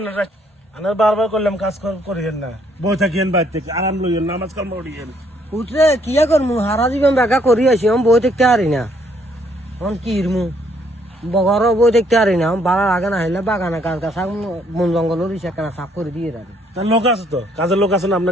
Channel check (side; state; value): both; normal; correlation 0.68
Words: না? আনার বারবার করলাম কাজ করিয়েন না, বই থাকিয়েন বাইর থেকে আরাম লইয়েন, নামাজ কালাম পড়িয়েন। উঠলে কিয়া করমু হারা জীবন বেগা করি আছি আমি বই দেখতে পারি না এখন কি ইরমু বগরও বই দেখতে পারি না বাড়ার আগে না হইলে বাগানে গাছ গাছ বন জঙ্গলের ইচ্ছা সাফ করে দিয়ে রাখি তার লোক আছে তো, কাজের লোক আছে না?